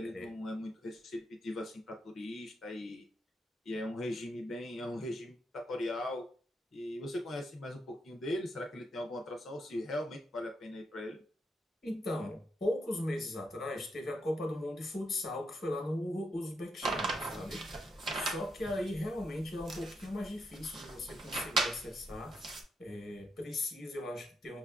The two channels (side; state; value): both; normal; correlation 0.81